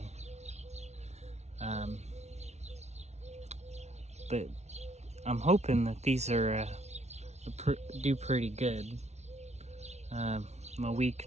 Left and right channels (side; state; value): left; late; 0.32 ms